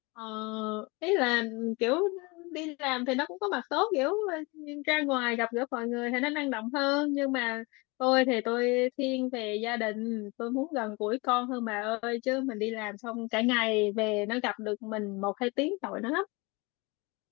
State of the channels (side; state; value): right; quieter; 26.8 dB